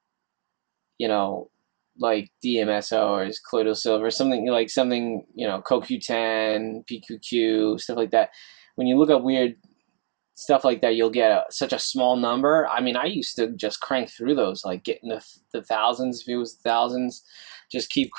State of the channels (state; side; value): silent; left; digital silence